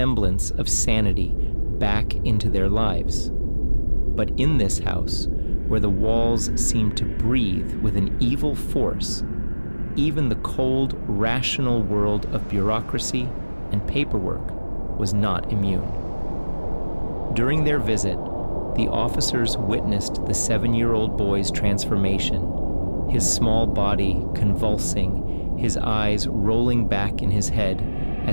of sanity back into their lives. But in this house, where the walls seemed to breathe with an evil force, even the cold, rational world of bureaucracy and paperwork was not immune. During their visit, the officers witnessed the 7-year-old boy's transformation, his small body convulsing, his eyes rolling back in his head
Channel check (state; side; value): inverted; both; correlation -1.00